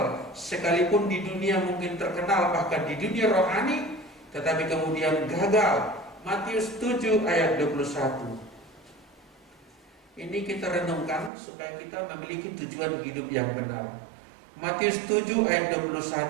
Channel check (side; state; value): left; drops out; at 11.3 s